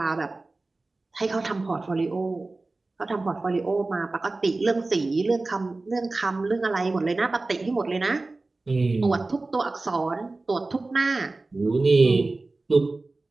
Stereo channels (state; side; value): quieter; left; 3.3 dB